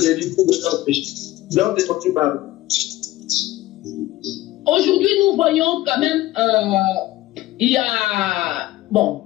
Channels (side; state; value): right; quieter; 16.6 dB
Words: de leur péché. Donc, c'est par aujourd'hui, nous voyons quand même, il y a, bon,